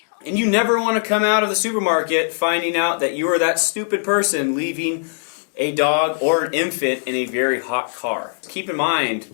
And you never want to come out of the supermarket finding out that you are that stupid person leaving a dog or an infant in a very hot car. Keep in mind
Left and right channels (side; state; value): right; silent; digital silence